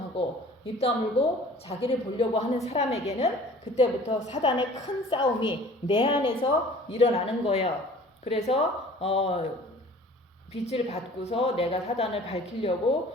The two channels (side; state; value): both; normal; correlation 0.48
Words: 입 다물고 자기를 보려고 하는 사람에게는 그때부터 사단의 큰 싸움이 내 안에서 일어나는 거예요. 그래서 빛을 받고서 내가 사단을 밝히려고